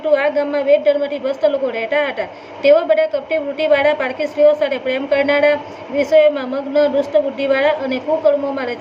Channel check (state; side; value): identical; both; correlation 1.00